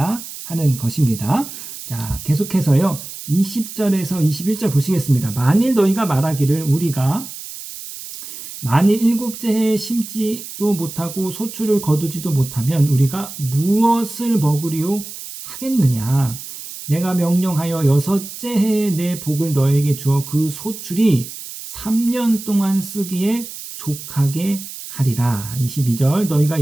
하는 것입니다. 자, 계속해서요. 20절에서 21절 보시겠습니다. 만일 너희가 말하기를 우리가 만일 7째 해에 심지도 못하고 소출을 거두지도 못하면 우리가 무엇을 먹으리요 하겠느냐. 내가 명령하여 6째 해에 내 복을 너에게 주어 그 소출이 3년 동안 쓰기에 족하게 하리라. 22절 너희가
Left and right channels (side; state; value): right; noise; hiss, 12 dB below the sound